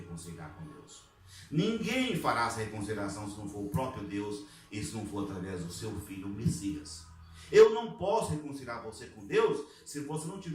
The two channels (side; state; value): both; identical; correlation 1.00